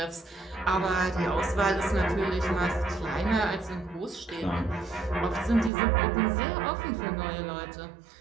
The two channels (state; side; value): drops out; left; at 5.7 s